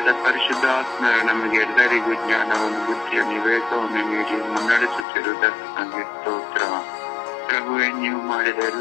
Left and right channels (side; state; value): right; drops out; at 5.1 s